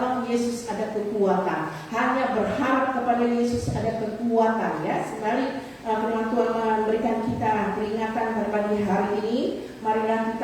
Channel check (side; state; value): both; identical; correlation 1.00